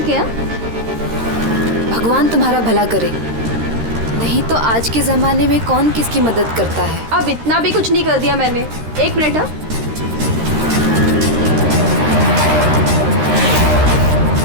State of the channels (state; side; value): late; left; 13 ms